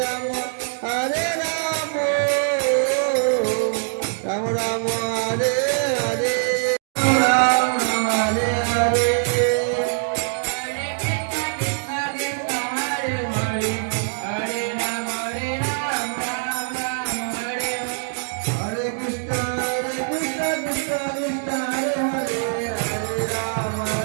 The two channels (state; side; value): silent; left; digital silence